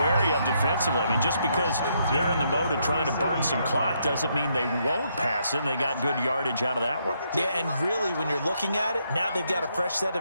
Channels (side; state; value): both; inverted; correlation -0.75